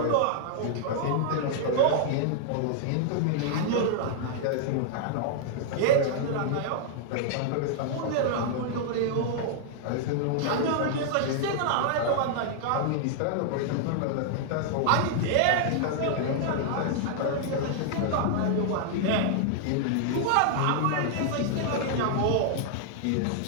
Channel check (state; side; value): different; both; correlation -0.01